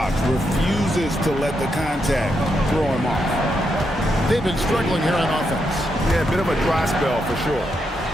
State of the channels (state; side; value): normal; both; correlation 0.81